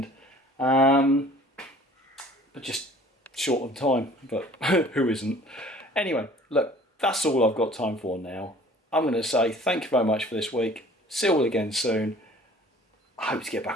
but just short on time, but who isn't? Anyway, look, that's all I've got time for now. I'm going to say thank you very much for this week. See you all again soon. I hope to get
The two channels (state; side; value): normal; both; correlation 0.50